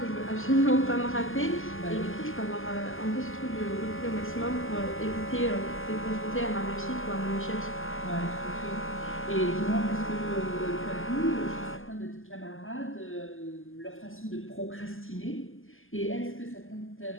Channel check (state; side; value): late; right; 0.59 ms